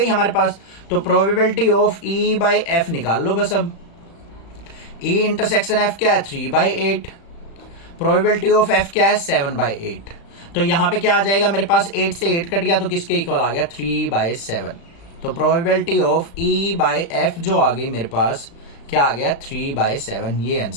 हमारे पास। तो probability of E by F निकाल लो बस। अब ई इंटरसेक्शन एफ क्या है 3/8, प्रोबेबिलिटी ऑफ एफ क्या है 7/8। तो यहां पे क्या आ जाएगा मेरे पास, 8 से 8 कट गया तो किसके इक्वल आ गया 3/7। तो probability of E by F जो आ गई मेरे पास क्या आ गया 3/7। ये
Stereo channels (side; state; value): right; late; 35 ms